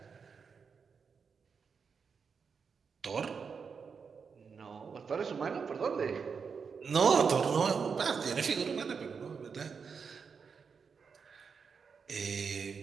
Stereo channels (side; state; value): left; quieter; 5.8 dB